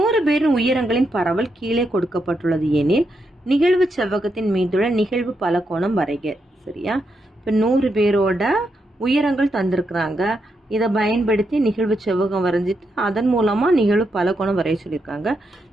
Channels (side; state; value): both; normal; correlation 0.82